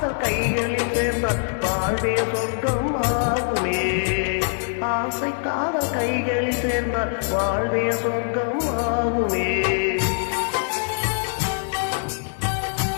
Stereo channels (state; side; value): silent; right; digital silence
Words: கைகளில் சேர்ந்த வாழ்வே சொர்க்கம் ஆகுமே ஆசை காதல் கைகளில் சேர்ந்த வாழ்வே சொர்க்கம் ஆகுமே